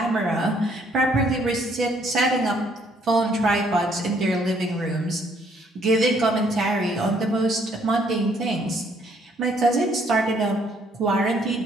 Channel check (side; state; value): both; normal; correlation 0.66